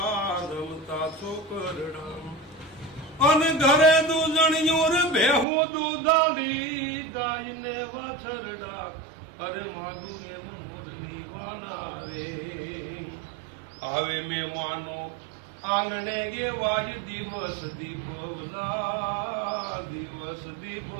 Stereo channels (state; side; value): drops out; left; at 5.5 s